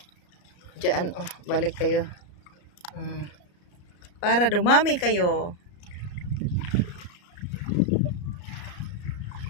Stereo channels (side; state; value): right; late; 34 ms